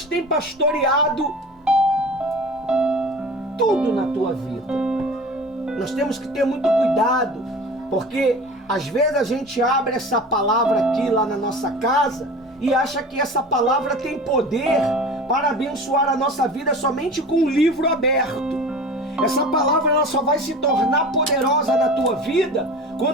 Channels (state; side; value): normal; both; correlation 0.37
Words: têm pastoreado tudo na tua vida. Nós temos que ter muito cuidado, porque às vezes a gente abre essa palavra aqui lá na nossa casa e acha que essa palavra tem poder para abençoar a nossa vida somente com um livro aberto. Essa palavra ela só vai se tornar poderosa na tua vida